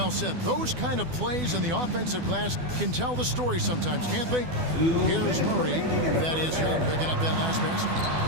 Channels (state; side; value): late; left; 12 ms